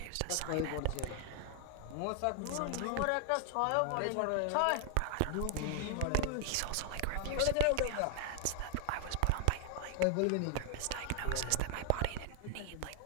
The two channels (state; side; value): different; both; correlation 0.00